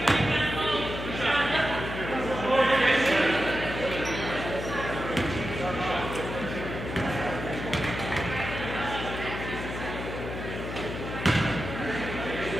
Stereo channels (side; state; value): left; noise; hum, 7 dB below the sound